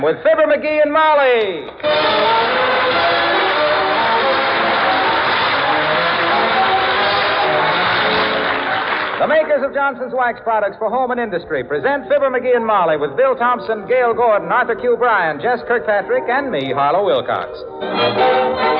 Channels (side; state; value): both; identical; correlation 1.00